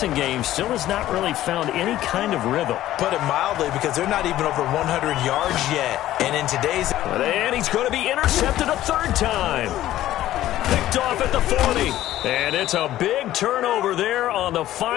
game still has not really found any kind of rhythm. Put it mildly, because they're not even over 100 yards yet. And in today's... And he's going to be intercepted a 3rd time. Picked off at the 40. And it's a big turnover there on the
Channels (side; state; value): right; quieter; 13.9 dB